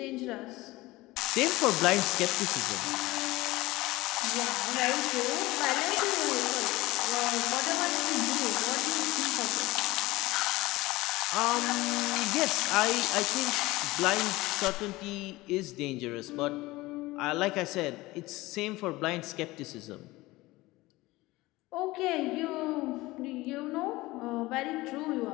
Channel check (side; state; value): right; quieter; 19.7 dB